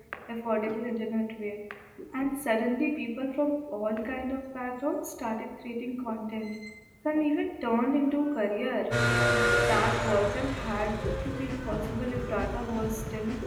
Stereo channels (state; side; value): identical; both; correlation 1.00